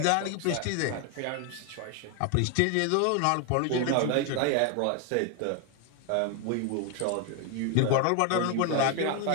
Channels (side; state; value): both; different; correlation 0.01